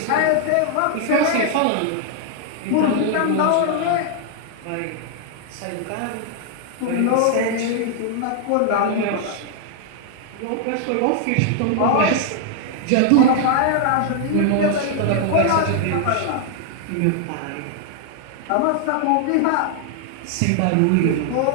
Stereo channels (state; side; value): different; both; correlation 0.00